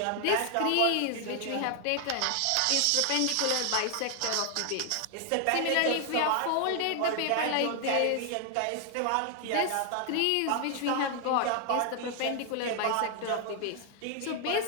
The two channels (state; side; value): different; both; correlation 0.00